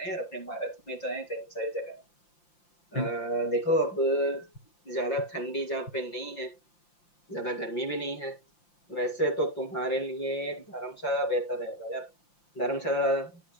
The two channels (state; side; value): late; right; 5.8 ms